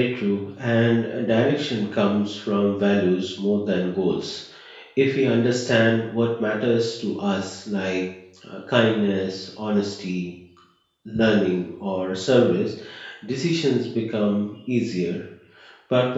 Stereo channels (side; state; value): both; identical; correlation 1.00